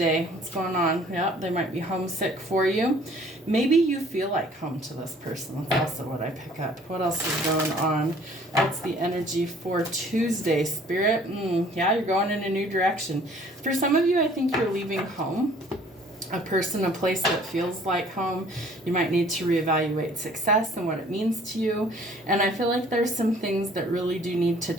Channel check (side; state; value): both; normal; correlation 0.55